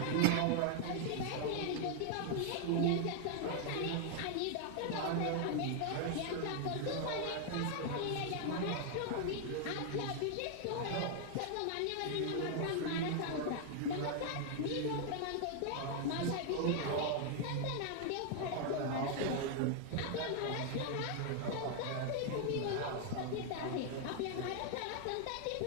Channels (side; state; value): both; different; correlation 0.00